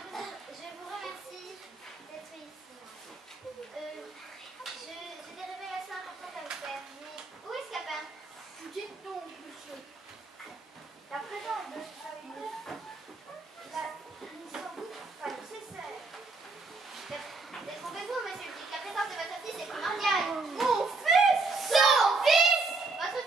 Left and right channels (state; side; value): quieter; left; 3.7 dB